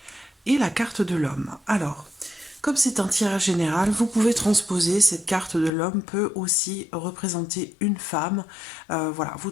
et la carte de l'homme. Alors, comme c'est un tirage général, vous pouvez transposer. Cette carte de l'homme peut aussi représenter une femme. Voilà, vous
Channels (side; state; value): right; drops out; at 5.7 s